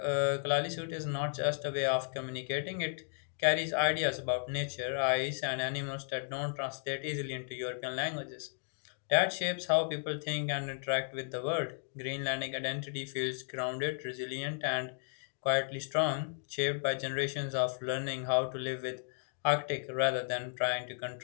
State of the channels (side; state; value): right; silent; digital silence